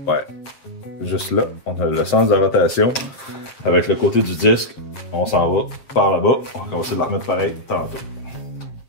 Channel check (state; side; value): late; right; 7.5 ms